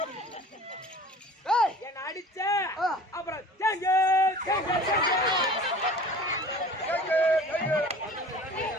ஏய் என்ன அடிச்ச ஆ. அப்புறம் தேங்க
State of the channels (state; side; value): normal; both; correlation 0.43